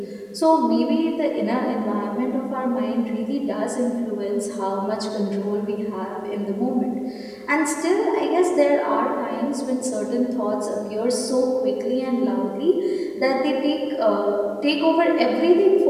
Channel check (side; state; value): both; identical; correlation 1.00